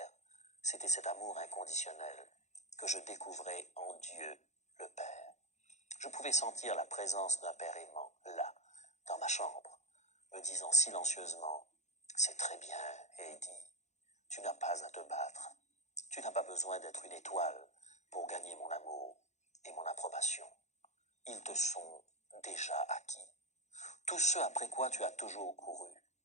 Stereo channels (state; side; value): late; right; 0.33 ms